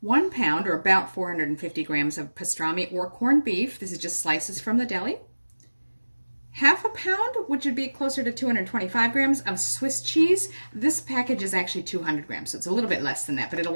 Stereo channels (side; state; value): both; inverted; correlation -1.00